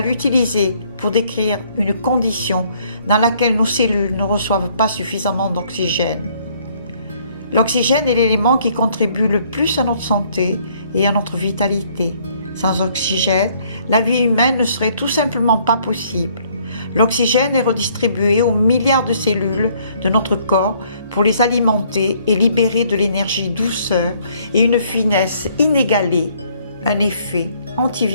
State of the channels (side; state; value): both; inverted; correlation -0.64